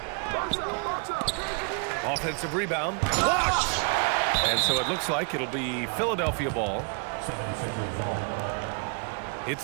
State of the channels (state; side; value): quieter; left; 37.8 dB